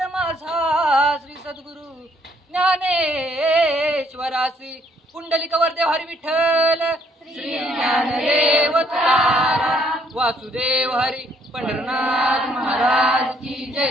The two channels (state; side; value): normal; both; correlation 0.67